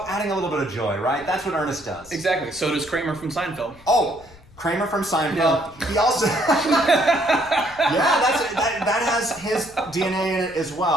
adding a little bit of joy, right? That's what Ernest does. Exactly. So does Kramer from Seinfeld. Oh, Kramer from Seinfeld. Yeah. He also... that has his DNA in it as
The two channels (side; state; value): left; noise; rumble, 24 dB below the sound